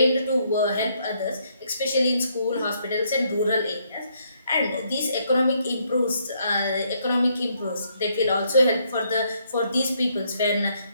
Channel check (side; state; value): both; inverted; correlation -0.72